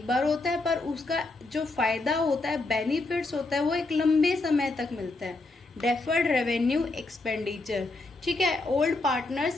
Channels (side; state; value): right; quieter; 3.2 dB